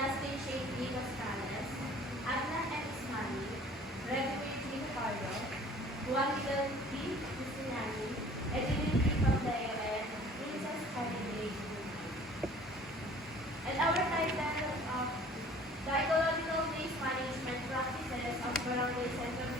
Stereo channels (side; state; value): both; normal; correlation 0.50